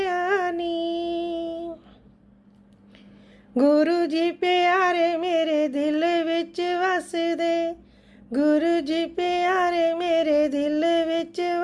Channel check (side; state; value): both; identical; correlation 1.00